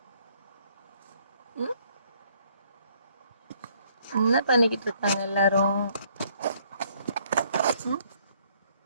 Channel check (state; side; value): inverted; both; correlation -0.65